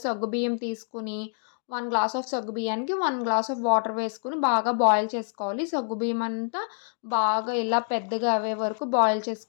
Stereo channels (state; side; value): silent; right; digital silence